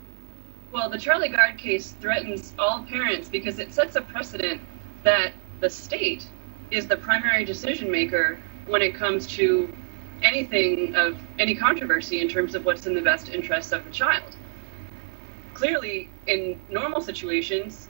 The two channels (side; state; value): left; silent; 61 dB below the other